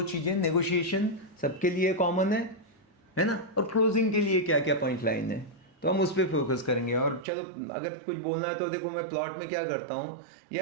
चीज़ें, नेगोशिएशन सबके लिए कॉमन है ना, और क्लोजिंग के लिए क्या क्या पॉइंट लाइन है, तो हम उस पर फोकस करेंगे। और चलो अगर कुछ बोलना है तो देखो, मैं प्लॉट में क्या करता हूँ,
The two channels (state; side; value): drops out; left; at 7.2 s